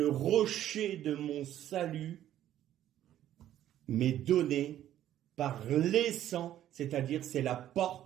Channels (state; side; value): quieter; left; 12.1 dB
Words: rocher de mon salut m'est donné par les sangs, c'est-à-dire c'est la